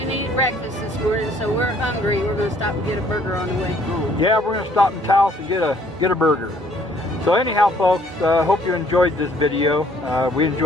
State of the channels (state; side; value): normal; both; correlation 0.61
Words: eat breakfast this morning, so we're hungry. We're going to stop and get a burger on the way home. yeah, we're going to stop in Taos and get a burger. So anyhow, folks, hope you enjoyed this video. We